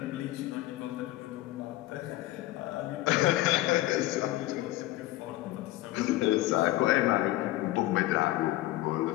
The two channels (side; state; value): right; quieter; 16.8 dB